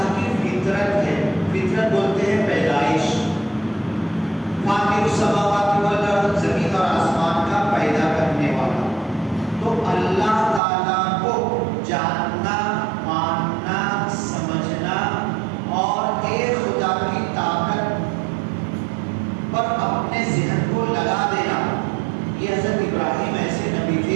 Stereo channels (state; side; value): drops out; left; at 10.6 s